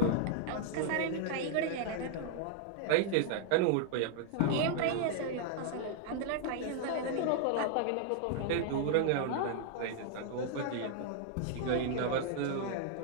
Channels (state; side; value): different; both; correlation -0.01